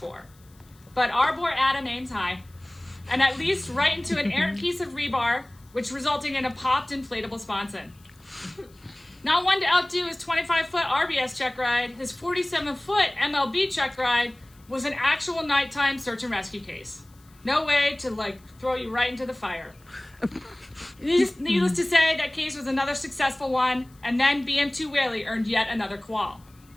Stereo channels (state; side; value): noise; left; hiss, 30 dB below the sound